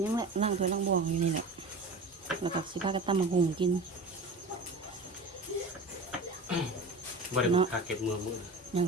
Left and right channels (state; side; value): quieter; left; 3.1 dB